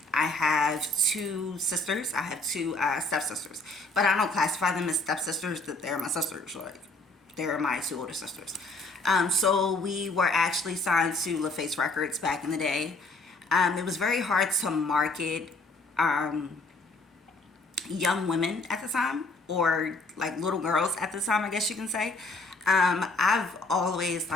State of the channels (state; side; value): quieter; right; 3.0 dB